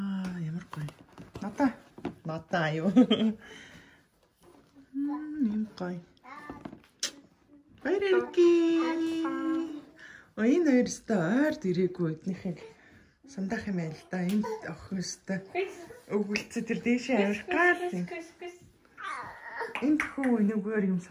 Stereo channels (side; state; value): both; identical; correlation 1.00